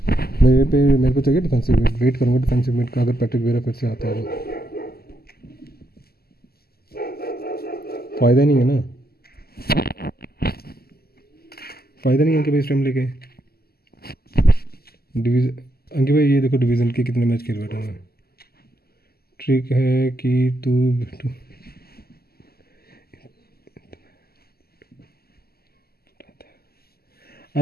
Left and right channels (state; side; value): late; right; 0.45 ms